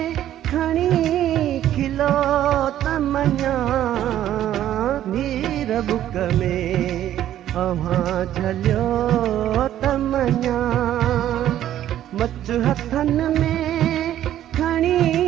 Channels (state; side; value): quieter; left; 12.0 dB